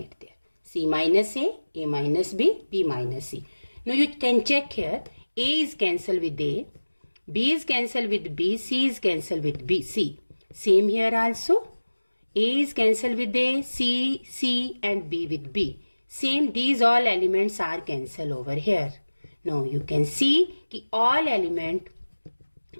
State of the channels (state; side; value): inverted; both; correlation -1.00